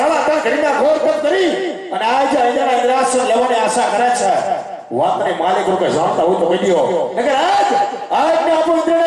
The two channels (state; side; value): identical; both; correlation 1.00